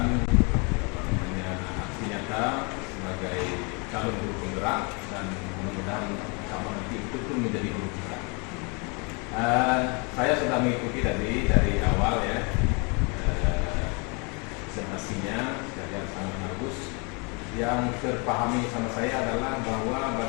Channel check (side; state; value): right; quieter; 32.2 dB